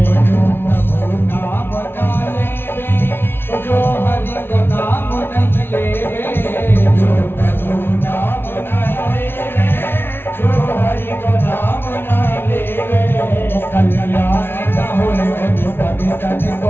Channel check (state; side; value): late; right; 0.11 ms